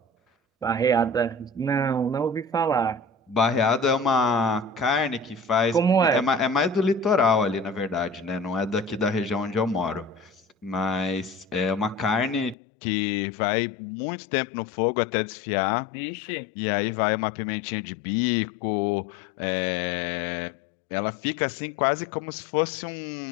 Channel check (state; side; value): drops out; right; at 12.6 s